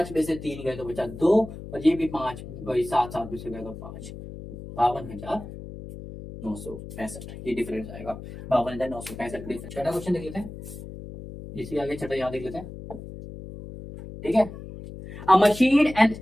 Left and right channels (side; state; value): left; noise; hum, 12 dB below the sound